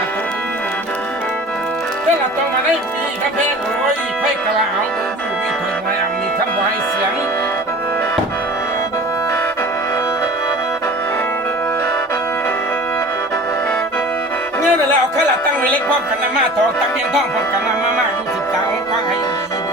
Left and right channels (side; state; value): both; normal; correlation 0.41